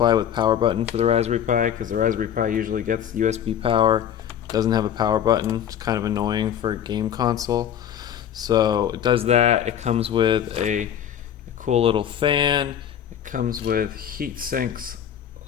with power button for the Raspberry Pi, because the Raspberry Pi usually gets USB power, doesn't have a power button. It's kind of annoying for a game console. So it does that. It comes with a cool little fan. It comes with heat sinks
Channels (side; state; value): right; quieter; 9.6 dB